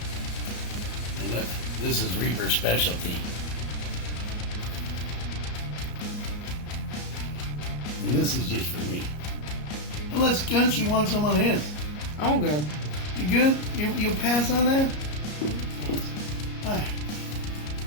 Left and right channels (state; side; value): late; right; 33 ms